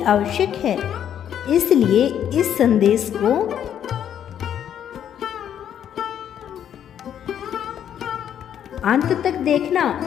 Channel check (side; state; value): right; quieter; 9.6 dB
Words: आवश्यक है, इसलिए इस संदेश को अंत तक देखना